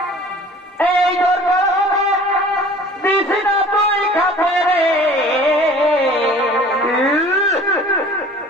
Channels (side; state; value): both; normal; correlation 0.47